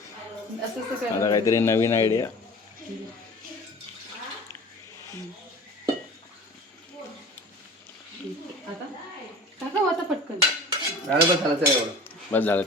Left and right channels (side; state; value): both; normal; correlation 0.40